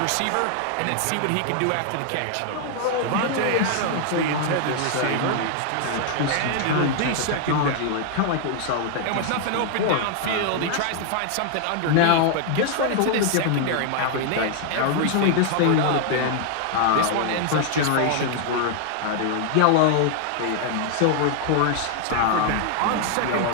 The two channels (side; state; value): both; different; correlation 0.00